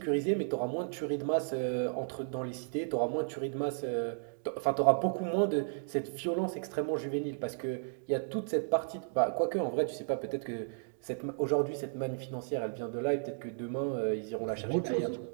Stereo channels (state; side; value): silent; left; digital silence